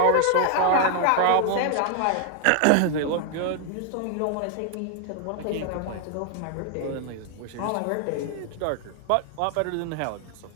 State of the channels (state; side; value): different; both; correlation 0.00